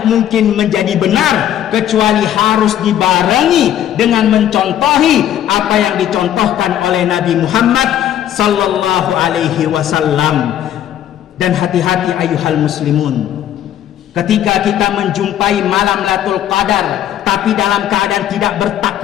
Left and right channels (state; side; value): quieter; right; 11.1 dB